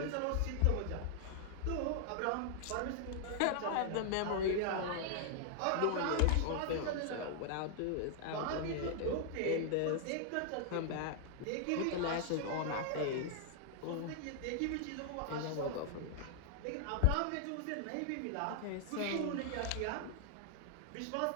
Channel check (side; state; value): both; different; correlation 0.00